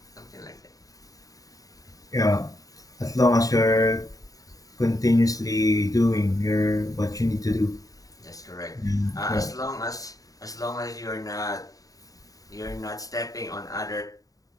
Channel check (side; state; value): right; late; 0.17 ms